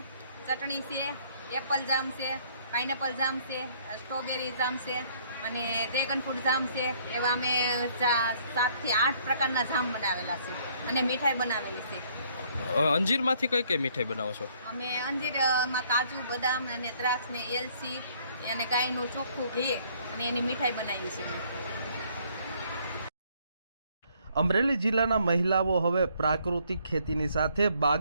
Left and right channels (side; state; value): both; inverted; correlation -0.63